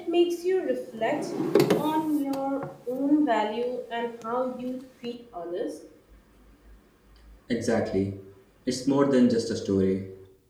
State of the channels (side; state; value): both; identical; correlation 1.00